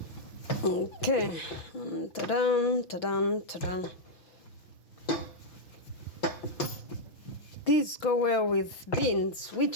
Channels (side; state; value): right; late; 6.0 ms